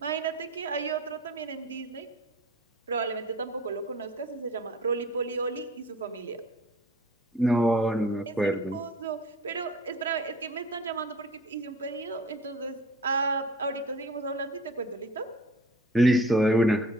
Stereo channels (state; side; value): normal; both; correlation 0.45